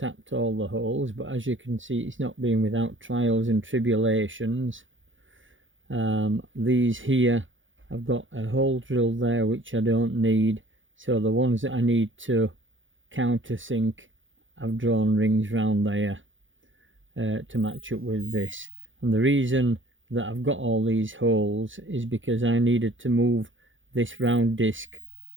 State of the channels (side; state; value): left; late; 0.56 ms